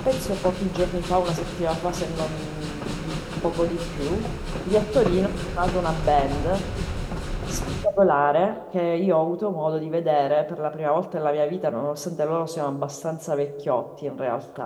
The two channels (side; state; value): both; identical; correlation 1.00